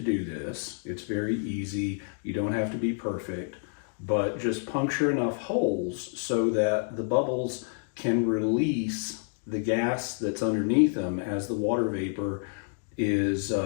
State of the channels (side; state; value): right; silent; 59 dB below the other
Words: do this. It's very easy. You don't have to be perfect, but just puncture enough holes so that the bubbles can release the gas that's underneath them as the water vapor is